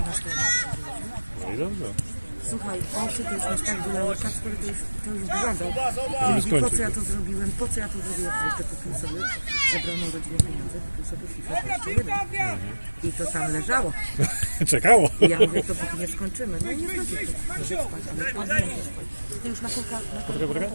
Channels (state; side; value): inverted; both; correlation -1.00